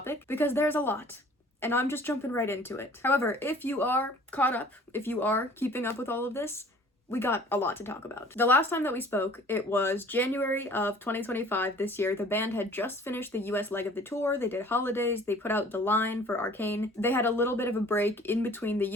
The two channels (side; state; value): both; normal; correlation 0.51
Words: because there's a lot. And I'm just jumping right into it. However, if you are caught up, if you are keeping up with all of this, we got a lot to talk about. The last time that we spoke, it was January of 2025 this year. The band had just finished the US leg of the tour. They did holidays, they put out The Line for Arcane. They had a little bit of a break in between the